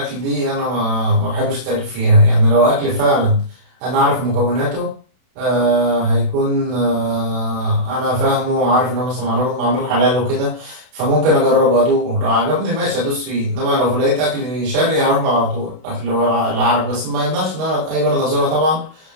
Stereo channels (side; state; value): left; late; 32 ms